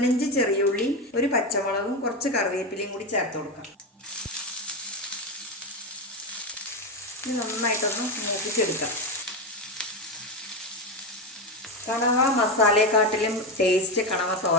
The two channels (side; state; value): both; normal; correlation 0.14